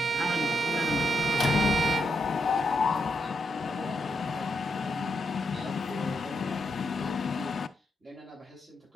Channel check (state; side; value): normal; both; correlation 0.82